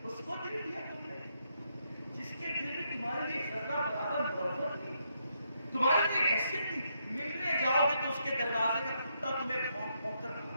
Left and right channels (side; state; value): both; inverted; correlation -0.78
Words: اس کو دل دیا تم نے جس کے دل میں تمہارے لیے ذرہ برابر محبت تھی، تمہاری کوئی حیثیت تھی. ملنے جاؤ گے تو اس کے دروازے کا کتا تمہیں بھونک بھونک کر